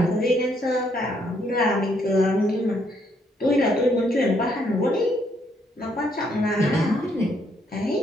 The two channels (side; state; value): both; normal; correlation 0.71